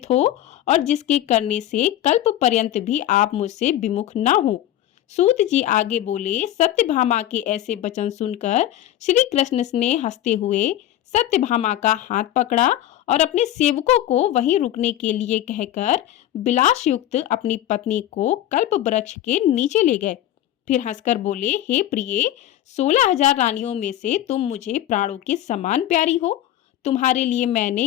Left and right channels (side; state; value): right; quieter; 12.7 dB